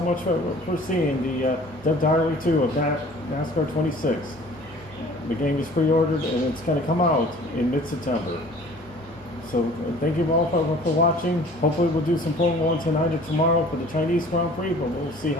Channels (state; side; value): normal; both; correlation 0.49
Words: much for seeing the Dev Diary 2 of NASCAR 26. The game is pre-ordered and it's going to come out in mid-September. So thank you all for watching. Hopefully we'll do some Formula 1 tonight or tomorrow for the Chinese Grand Prix, but we'll see